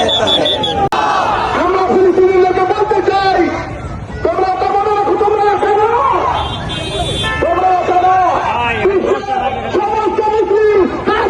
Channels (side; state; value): both; identical; correlation 1.00